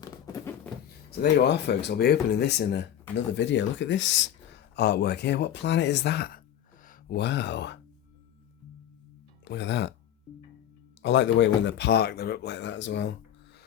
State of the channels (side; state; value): right; quieter; 10.5 dB